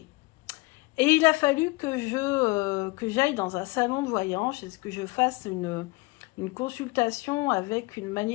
Et il a fallu que j'aille dans un salon de voyance, que je fasse une consultation avec une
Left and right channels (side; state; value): right; quieter; 23.9 dB